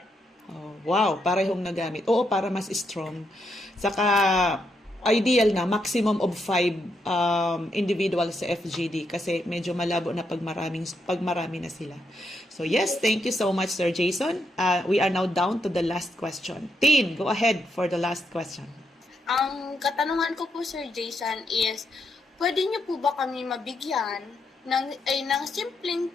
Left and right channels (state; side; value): normal; both; correlation 0.80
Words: Oh, wow, parehong nagamit. Oo, para mas strong. Saka, ideal na, maximum of 5 individuals sa FGD kasi medyo malabo na pag marami na sila. So yes, thank you so much, Sir Jason. We are now down to the last question. Tin, go ahead for the last question. Ang katanungan ko po, Sir Jason, is pwede niyo po ba kami mabigyan ng simpleng